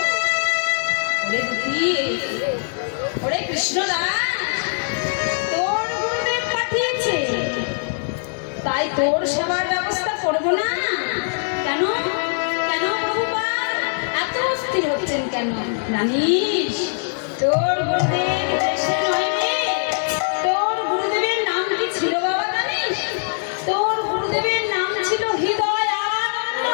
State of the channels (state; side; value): silent; right; digital silence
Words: ওরে দুঃখী ওরে কৃষ্ণদাস তোর গুরুদেব পাঠিয়েছে তাই তোর সেবার ব্যবস্থা করবো না কেন কেন প্রভুপাদ এত অস্থির হচ্ছেন কেন জানিস তোর গুরুদেব দেশে নয় রে তোর গুরুদেবের নাম কি ছিল বাবা জানিস তোর গুরুদেবের নাম ছিল হৃদয় আনন্দ